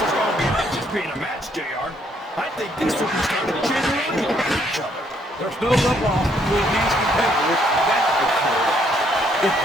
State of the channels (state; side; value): normal; both; correlation 0.69